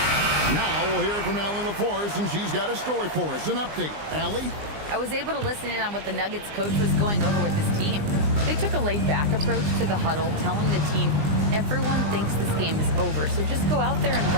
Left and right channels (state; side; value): late; left; 20 ms